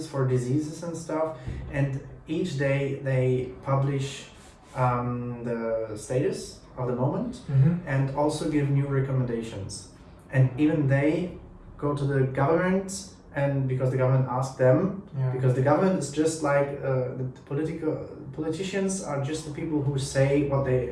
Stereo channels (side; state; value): both; identical; correlation 1.00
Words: for diseases and stuff, and each day they publish the status of the moment and also give new recommendations. And even they go to the government, and because the government asks them, because the government is just like the politicians are just the people who say what